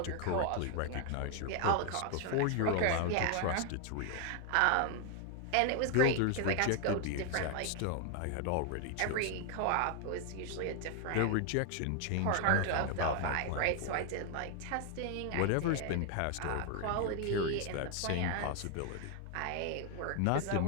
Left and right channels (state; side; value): different; both; correlation 0.00